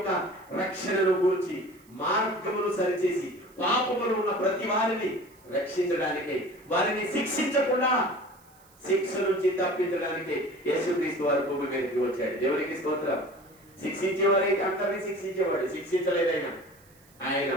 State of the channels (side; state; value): right; noise; hiss, 29 dB below the sound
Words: రక్షణను గురించి, మార్గమును సరిచేసి పాపములు ఉన్న ప్రతి వారిని రక్షించడానికి, వారిని శిక్షించకుండా శిక్ష నుంచి తప్పించడానికి యేసుక్రీస్తు వారు భూమి మీదకి వచ్చాడు. దేవునికి స్తోత్రం. శిక్షించేవారైతే అందరినీ శిక్షించేవాడు. శిక్షించలేదైనా ఆయన